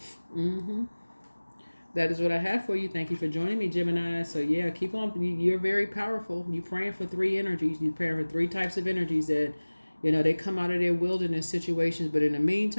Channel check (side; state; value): both; inverted; correlation -1.00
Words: That is what I have for you. Thank you for joining me, Gemini. So yeah, keep on. You're very powerful. You're praying for 3 energies. You're praying for 3 types of energies that, they come out of their wilderness situations. But in the